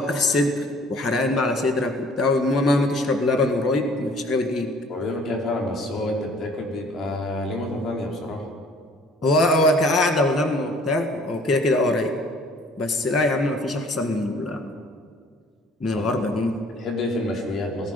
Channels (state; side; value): normal; both; correlation 0.54